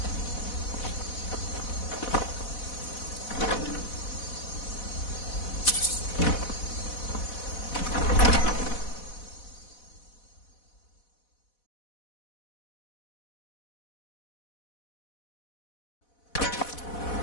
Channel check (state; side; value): late; right; 4.1 ms